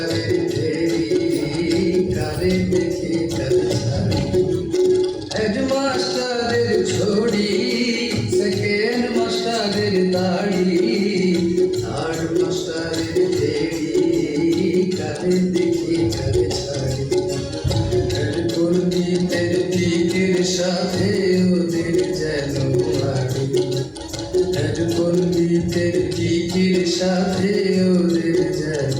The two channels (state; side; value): identical; both; correlation 1.00